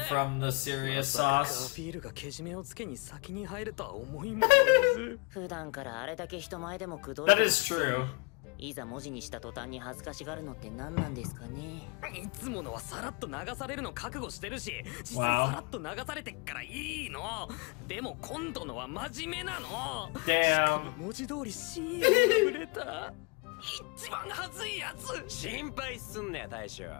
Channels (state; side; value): quieter; right; 30.5 dB